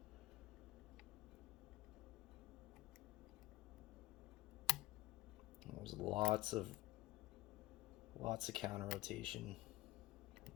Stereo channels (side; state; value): right; quieter; 17.9 dB